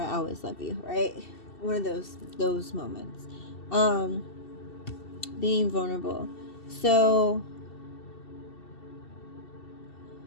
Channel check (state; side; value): late; right; 2.7 ms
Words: I always love you, right? One of those moments. Being vulnerable. So,